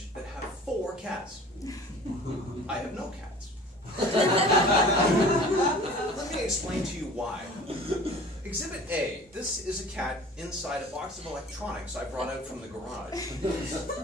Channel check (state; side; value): normal; both; correlation 0.44